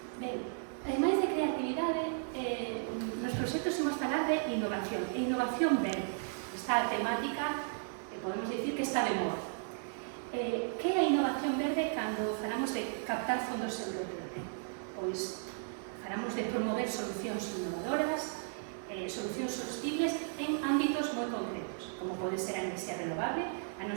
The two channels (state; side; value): silent; left; digital silence